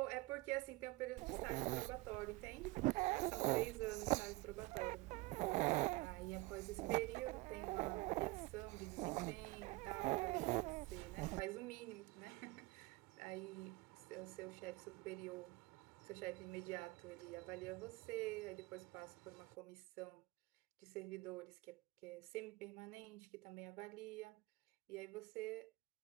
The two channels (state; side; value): quieter; left; 21.3 dB